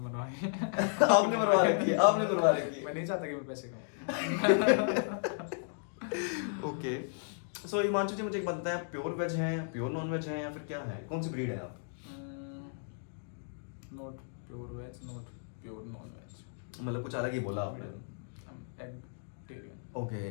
आपने मरवा रखी है, आपने मरवा रखी है। मैं नहीं चाहता कि मैं पैसे कमाऊं। ओके, सो हिमांशु जी, मुझे एक बात बताएं, आप प्योर वेज हैं, प्योर नॉन वेज हैं, या फिर क्या है? कौन सी ब्रीड है आप? Not pure veg, not pure non veg. मतलब कुछ अलग ही बोला आपने। एगिटेरियन। ओके,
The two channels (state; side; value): silent; right; digital silence